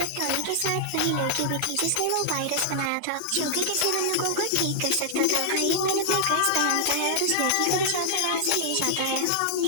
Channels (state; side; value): different; both; correlation -0.01